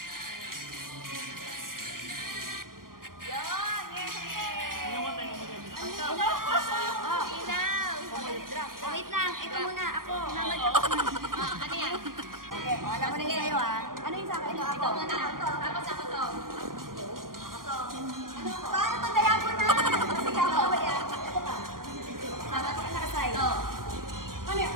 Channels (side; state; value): left; late; 0.91 ms